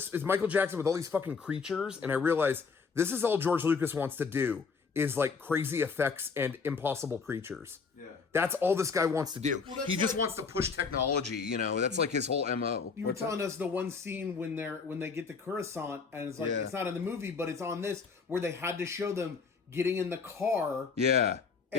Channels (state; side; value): quieter; right; 5.2 dB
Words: Michael Jackson with all these fucking creatures. And I realized this is all George Lucas wants to do is like crazy effects and impossible creatures. Yeah. That's all this guy wants to do. Well, He just like- wants to push technology, That's like his whole MO. You were telling us the one scene when they get the Coruscant and it's like Yeah. it's not in the movie, but it's on this where they had to show them getting in the car. Yeah.